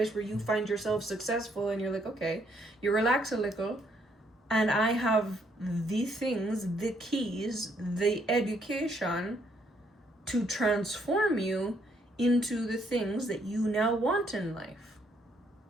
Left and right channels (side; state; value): both; normal; correlation 0.70